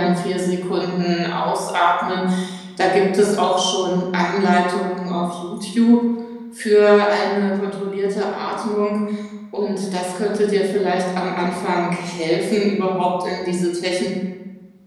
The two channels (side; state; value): both; identical; correlation 1.00